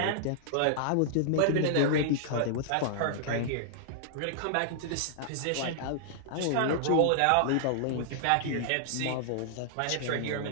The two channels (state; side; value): different; both; correlation -0.01